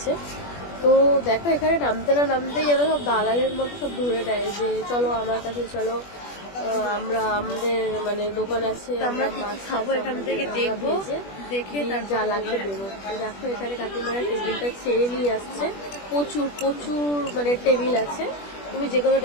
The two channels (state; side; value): late; right; 21 ms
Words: তো দেখো, এখানে নামতে না নামতেই যেন সব দালালের মতো সব ধরে নেয় যে চলো আমার কাছে চলো, আমরা আমাদের মানে দোকান আছে, আমরা মাছ খাবো, এখান থেকে দেখবো, দেখে তার যা লাগবে দেবো। তো দেখো এখানে কাকিমারা টেবিলটা ছেড়ে নিয়ে আসছে। প্রচুর প্রচুর মানে টেবিল আছে, তুমি যে কোনো